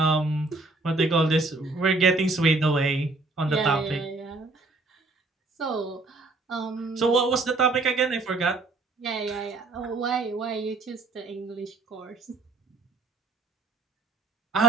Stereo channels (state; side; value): quieter; left; 3.4 dB